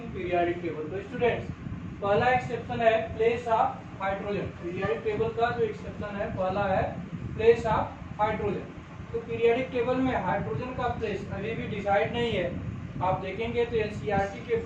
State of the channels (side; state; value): both; identical; correlation 1.00